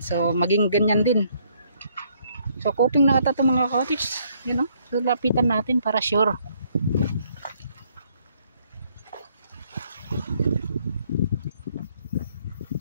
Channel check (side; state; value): both; inverted; correlation -0.67